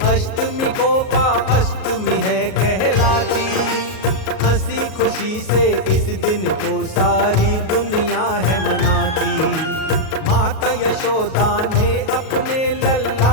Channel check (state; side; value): late; right; 38 ms